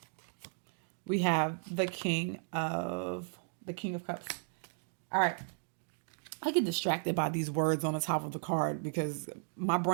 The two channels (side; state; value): left; silent; digital silence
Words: We have the King of Cups. All right. I get distracted by these words on the top of the card because my